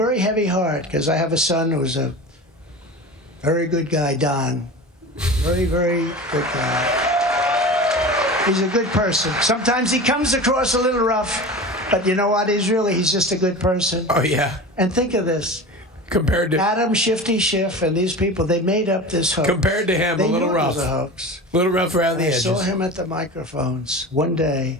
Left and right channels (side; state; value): both; normal; correlation 0.31